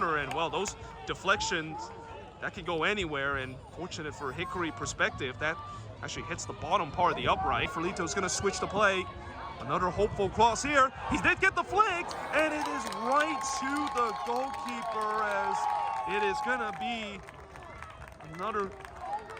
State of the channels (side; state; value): both; identical; correlation 1.00